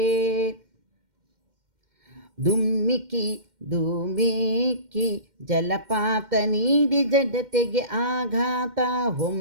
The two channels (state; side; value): late; left; 2.1 ms